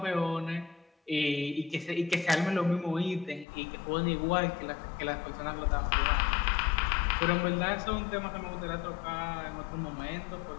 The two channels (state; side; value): drops out; right; at 3.5 s